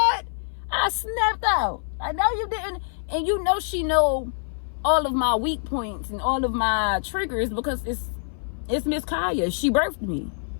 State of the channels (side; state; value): right; silent; 58 dB below the other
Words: I snapped out. I know you didn't, and you know she know all of my weak points and all of my triggers because it's Miss Kaya. She birthed me.